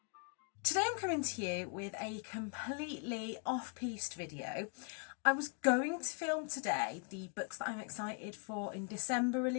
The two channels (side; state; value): right; quieter; 39.6 dB